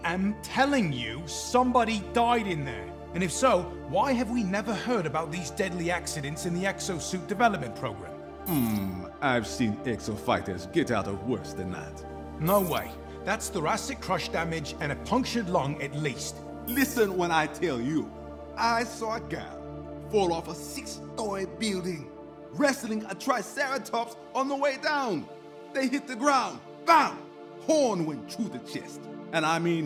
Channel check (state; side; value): identical; both; correlation 1.00